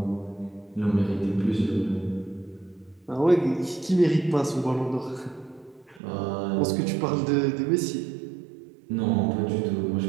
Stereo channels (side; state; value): left; drops out; at 6.0 s